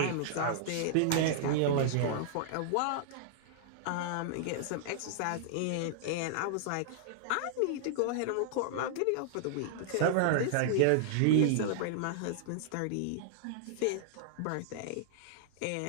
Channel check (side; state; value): both; different; correlation -0.01